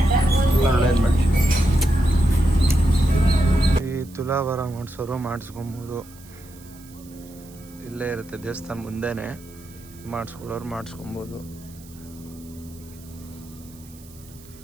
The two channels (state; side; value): noise; right; hiss, 23 dB below the sound